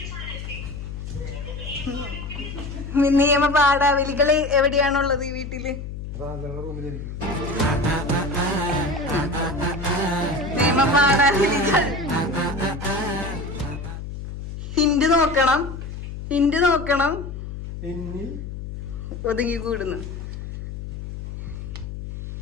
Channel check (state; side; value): noise; left; hum, 8 dB below the sound